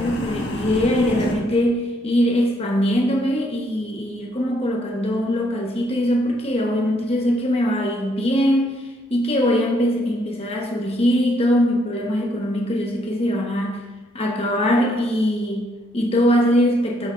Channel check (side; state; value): both; normal; correlation 0.71